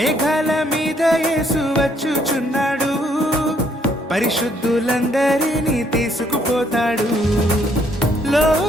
మీద యేసు వచ్చుచున్నాడు, పరిశుద్ధులందరినీ తీసుకుపోతాడు.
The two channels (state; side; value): normal; both; correlation 0.68